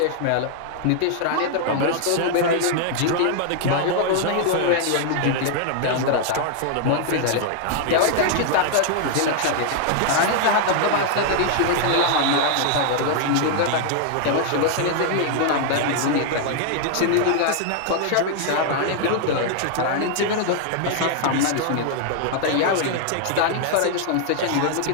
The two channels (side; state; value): both; different; correlation 0.00